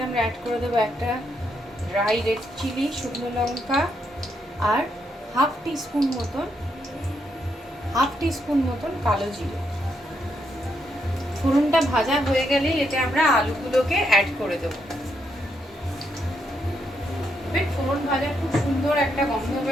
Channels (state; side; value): normal; both; correlation 0.78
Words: আমরা অ্যাড করে দেবো একটা ড্রাই রেড চিলি, শুকনো লঙ্কা, আর হাফ টিস্পুন মতন কালো জিরে। ফোড়নটা ভাজা হয়ে গেলেই এতে আমরা আলুগুলোকে অ্যাড করে দেবো। ফোড়ন ভাজা খুব সুন্দর একটা গন্ধ